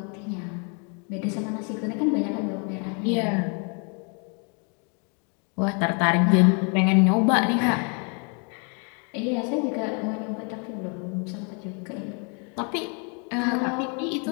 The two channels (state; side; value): quieter; right; 37.5 dB